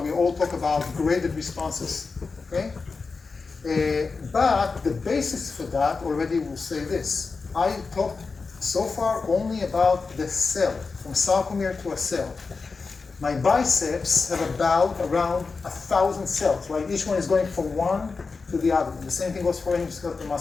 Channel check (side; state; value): right; quieter; 4.5 dB